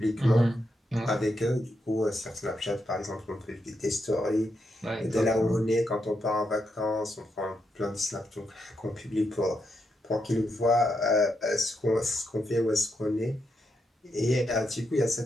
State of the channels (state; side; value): normal; both; correlation 0.82